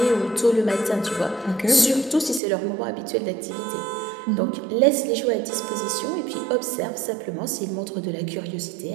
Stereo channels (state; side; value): drops out; left; at 2.4 s